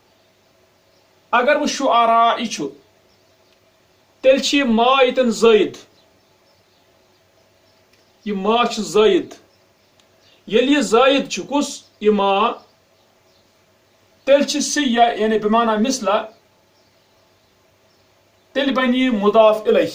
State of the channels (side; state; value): both; identical; correlation 1.00